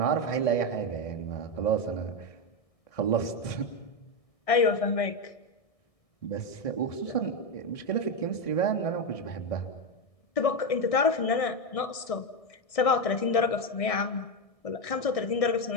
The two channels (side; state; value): right; late; 1.6 ms